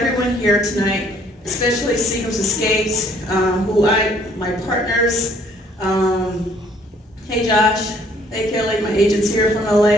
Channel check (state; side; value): normal; both; correlation 0.62